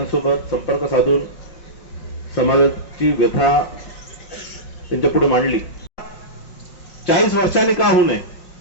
संपर्क साधून समाजाची व्यथा त्यांच्या पुढे मांडली। 40 वर्षांनी का होऊ नये,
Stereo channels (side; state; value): right; late; 5.5 ms